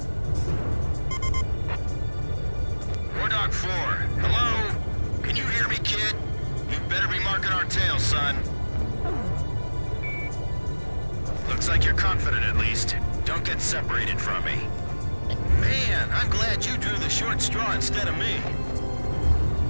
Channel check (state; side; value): inverted; both; correlation -1.00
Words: Dog 4, hello? Can you hear me, kid? You better be marking our tail, son. Looks like you're confident, at least. Don't get separated from me. Man, I'm glad you drew the short straw instead of me.